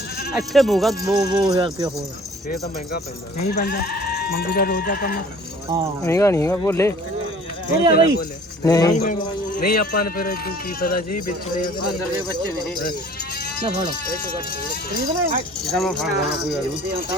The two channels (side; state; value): both; normal; correlation 0.50